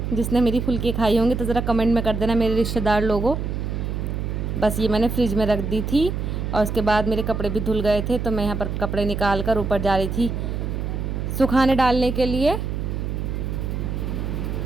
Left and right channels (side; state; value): right; noise; hum, 3 dB below the sound